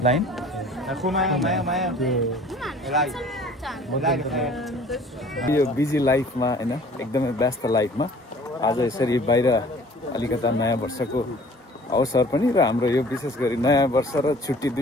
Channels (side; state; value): both; normal; correlation 0.50